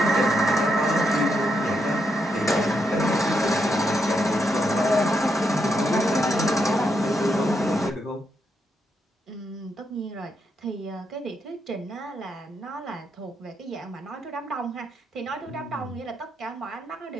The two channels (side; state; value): both; normal; correlation 0.80